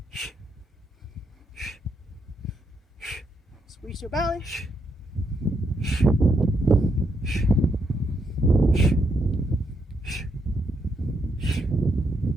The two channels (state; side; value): normal; both; correlation 0.78